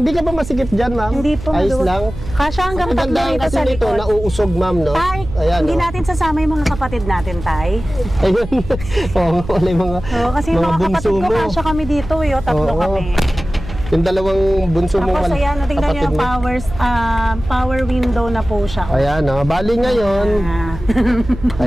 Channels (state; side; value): noise; right; hum, 11 dB below the sound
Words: ka ba masikip dyan, ma'am? Hindi po. Ayos maluwag. lang. Kasya hanggang Ang tatlo ganda dito kasi sa nito, likod. nauusog, ma'am, no? Tay, Ayan, hindi no? natin sasama yung mga kapatid natin, Tay. Ayun. Oo, wala yung mga, Oo, kasi yung mga kapatid ko, mo. kasya kami dito, tatlo Oo. kami. Yung dalawang bunso mo. Tapos ayan, tingnan nyo yung power window na po siya. Ayan, no? Bali ngayon.